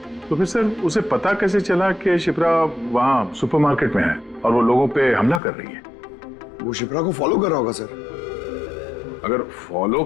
तो फिर सर उसे पता कैसे चला कि शिप्रा वहाँ सुपरमार्केट में है और वो लोगों पे हमला कर रही है? वो शिप्रा को फॉलो कर रहा होगा सर। अगर फॉलो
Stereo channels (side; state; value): right; drops out; at 5.4 s